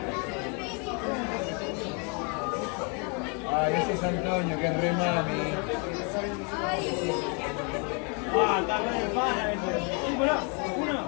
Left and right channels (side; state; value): right; quieter; 35.2 dB